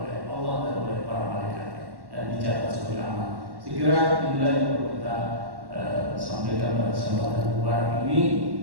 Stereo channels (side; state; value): left; late; 1.1 ms